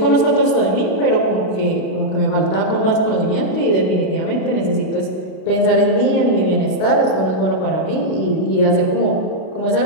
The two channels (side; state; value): right; late; 33 ms